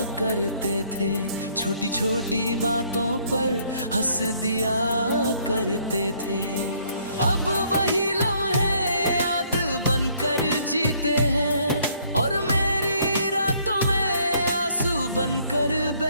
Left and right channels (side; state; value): both; inverted; correlation -0.65